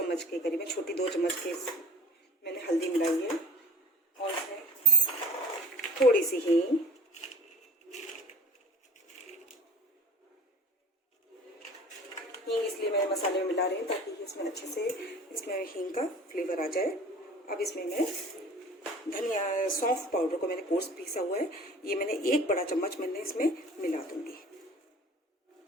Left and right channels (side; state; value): both; normal; correlation 0.46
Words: के करीबन, छोटी 2 चम्मच के मैंने हल्दी मिलाई है और इसमें थोड़ी सी हींग, इसलिए मैं मसाले में मिला रही हूँ ताकि इसमें अच्छे से हींग का फ्लेवर आ जाए। अब इसमें मैं धनिया सौंफ पाउडर को मैंने कोर्स पीसा हुआ है, ये मैंने 1 बड़ा चम्मच मैंने इसमें मिला दूंगी।